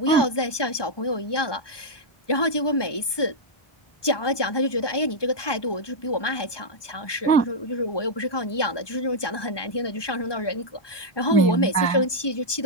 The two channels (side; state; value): right; late; 1.2 ms